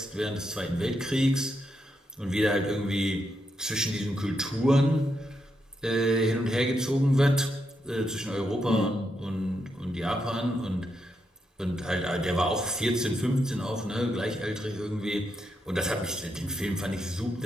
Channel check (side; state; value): both; normal; correlation 0.82